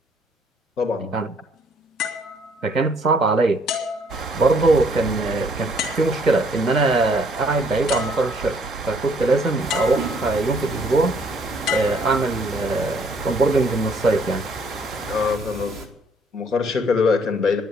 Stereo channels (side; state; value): both; normal; correlation 0.64